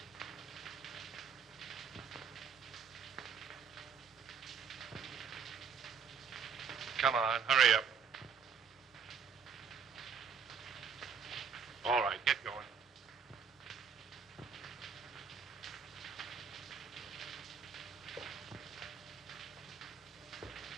Come on, hurry up. All right, get going.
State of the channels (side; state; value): left; quieter; 6.5 dB